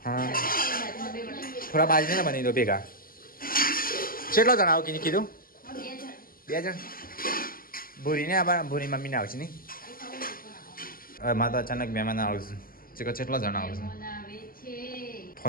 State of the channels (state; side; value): late; right; 0.42 ms